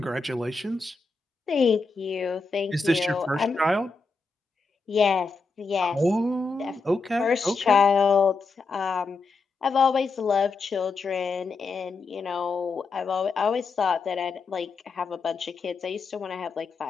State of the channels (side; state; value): right; quieter; 4.2 dB